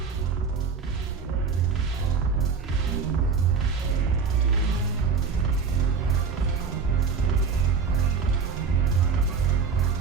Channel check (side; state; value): left; quieter; 5.5 dB